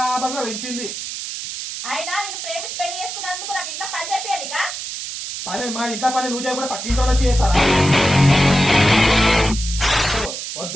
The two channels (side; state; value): right; noise; hiss, 7 dB below the sound